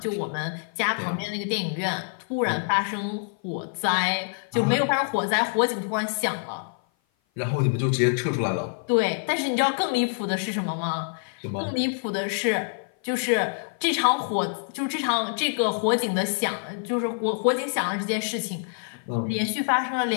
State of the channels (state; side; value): silent; right; 55 dB below the other